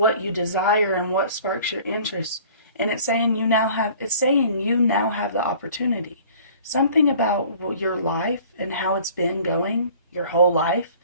you desire and what sparks your interest. And it's saying you now have the opportunity. Something about your life and how it's been going your whole life,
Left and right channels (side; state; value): both; inverted; correlation -0.50